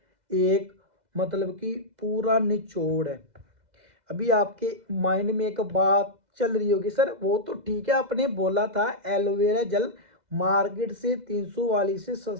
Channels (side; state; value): left; late; 2.0 ms